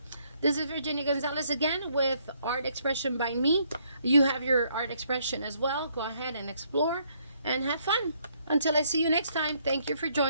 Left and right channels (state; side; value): inverted; both; correlation -0.69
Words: this is Virginia Gonzalez again with Art Expression by me. You have your art expression as well. Go ahead and explore and have fun. Until I see you next time, thank you for